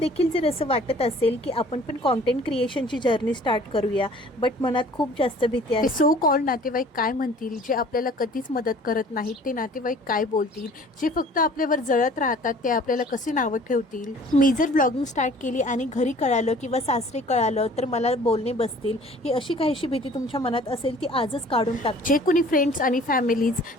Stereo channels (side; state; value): both; normal; correlation 0.51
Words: जर असं वाटत असेल की आपण पण कॉन्टेंट क्रिएशनची जर्नी स्टार्ट करूया, बट मनात खूप जास्त भीती आहे. सो कॉल्ड नातेवाईक काय म्हणतील, जे आपल्याला कधीच मदत करत नाहीत ते नातेवाईक काय बोलतील, जे फक्त आपल्यावर जळत राहतात ते आपल्याला कसे नावं ठेवतील. मी जर ब्लॉगिंग स्टार्ट केली आणि घरी कळालं किंवा सासरे कळालं तर मला बोलणे बसतील, ही अशी काहीशी भीती तुमच्या मनात असेल ती आजच काढून टाक. जे कोणी फ्रेंड्स आणि फॅमिलीज